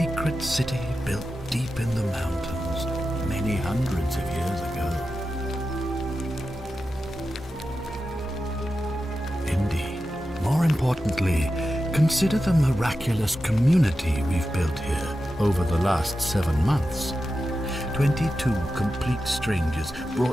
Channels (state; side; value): normal; both; correlation 0.91